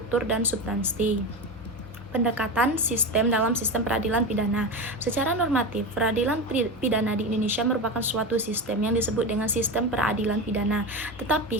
dan substansi. Pendekatan sistem dalam sistem peradilan pidana. Secara normatif, peradilan pidana di Indonesia merupakan suatu sistem yang disebut dengan sistem peradilan pidana.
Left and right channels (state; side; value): normal; both; correlation 0.21